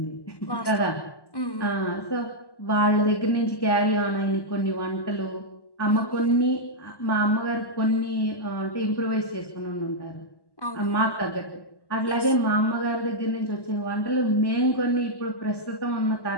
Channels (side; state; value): right; late; 1.1 ms